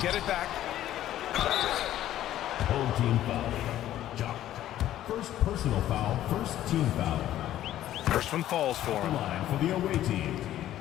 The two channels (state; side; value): quieter; right; 12.8 dB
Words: it back. Home team foul. Jock. First personal foul, first team foul. First one falls for him. Line for the away team.